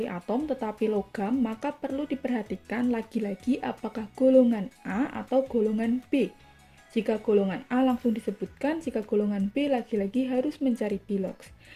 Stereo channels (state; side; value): identical; both; correlation 1.00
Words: tetapi logam, maka perlu diperhatikan lagi-lagi apakah golongan A atau golongan B. Jika golongan A langsung disebutkan, jika golongan B lagi-lagi harus mencari bilogs.